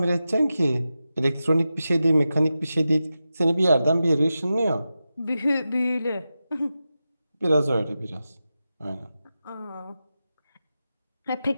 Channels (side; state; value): both; inverted; correlation -0.92